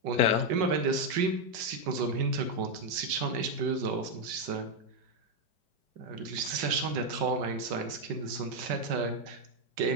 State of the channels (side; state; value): left; late; 5.5 ms